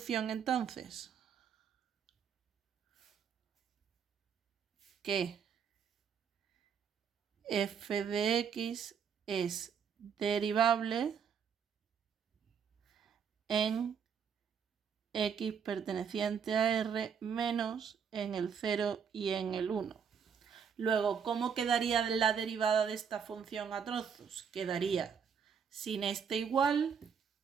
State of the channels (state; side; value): quieter; left; 7.1 dB